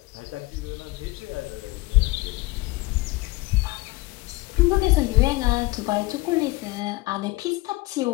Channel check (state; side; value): quieter; right; 21.6 dB